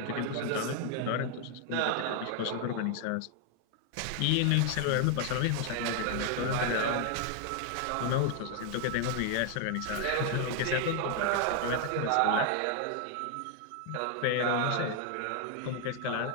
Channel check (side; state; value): both; different; correlation 0.00